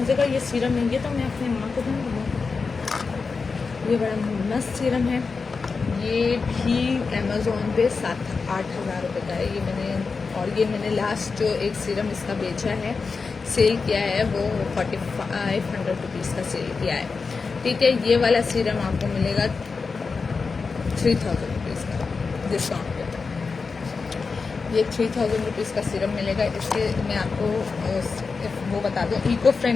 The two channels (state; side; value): quieter; right; 4.7 dB